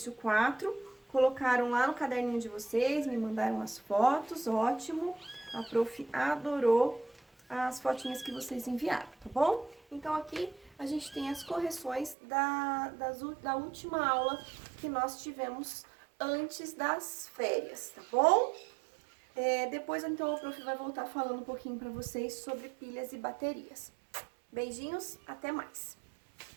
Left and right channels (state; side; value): drops out; left; at 12.2 s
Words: 4, colocaram lá no caderninho de vocês, me mandaram as fotos, ótimo. A prof adorou as fotinhas que vocês enviaram, tá bom? Então, aqui a gente tem as correções da última aula que nós tivemos antes das férias, tá bom? Depois, então, o prof vai voltar falando um pouquinho para vocês sobre pilhas e baterias. Beijinhos, até mais!